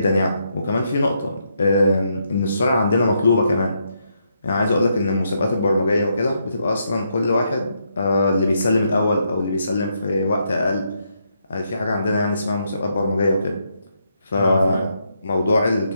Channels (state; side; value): inverted; both; correlation -0.78